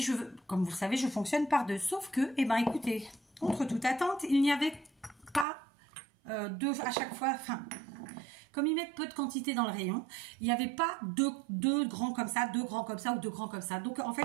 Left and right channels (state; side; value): drops out; left; at 5.5 s